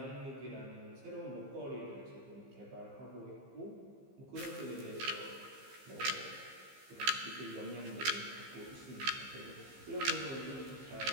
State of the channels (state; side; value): late; left; 15 ms